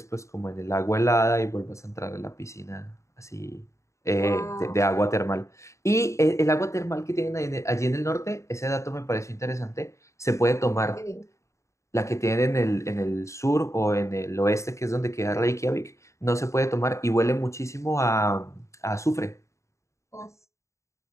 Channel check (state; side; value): late; right; 0.14 ms